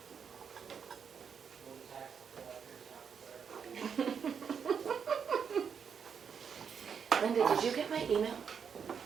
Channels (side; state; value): left; quieter; 6.9 dB